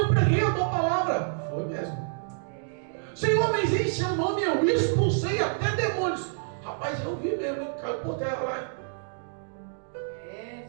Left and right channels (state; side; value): silent; left; digital silence